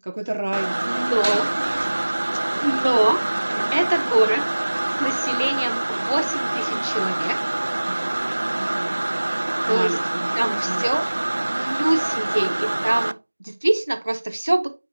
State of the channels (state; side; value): inverted; both; correlation -1.00